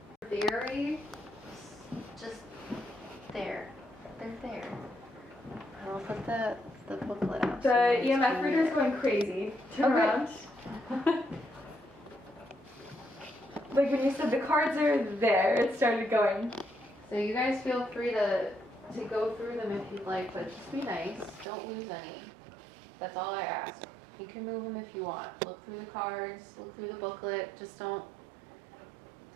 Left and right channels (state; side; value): drops out; left; at 21.5 s